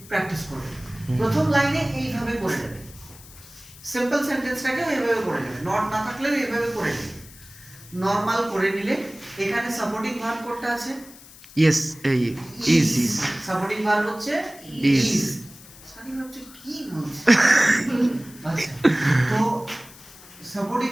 প্র্যাকটিস করবে প্রথম লাইনে এইভাবে করে নেবে সিম্পল সেন্টেন্সটাকে এইভাবে করে নেবে নট না থাকলেও এইভাবে করে নেবে নরমাল করে নিলে এখানে সাপোর্টিং ভার্ব কোনটা আছে Yes. Is. সাপোর্টিং ভার্ব হচ্ছে Is. ইজ সানি ভাবছে কি বলছে আচ্ছা তো সাপোর্টিং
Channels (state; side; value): noise; left; hiss, 20 dB below the sound